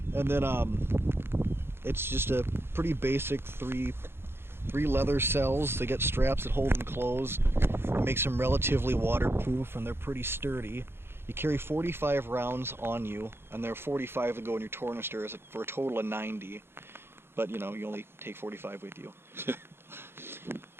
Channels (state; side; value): late; left; 0.11 ms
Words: And then it's just a pretty basic three leather cells. They get straps that hold them closed. It makes them relatively waterproof, and they're pretty sturdy. You carry 45 rounds on you, and there are 45 that go in your tornister for a total of 90. But you know, you only take 45 with you.